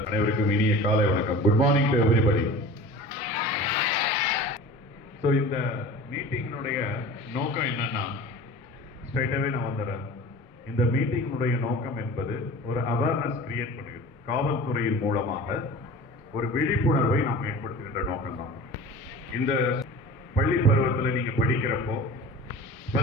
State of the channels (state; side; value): normal; both; correlation 0.38